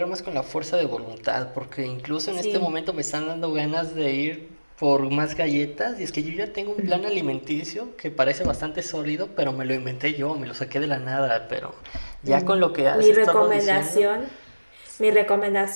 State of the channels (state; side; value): inverted; both; correlation -1.00